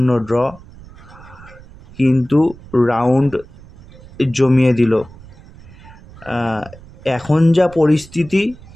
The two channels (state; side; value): noise; right; rumble, 21 dB below the sound